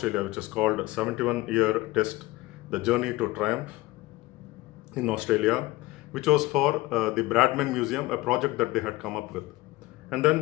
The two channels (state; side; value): quieter; right; 19.7 dB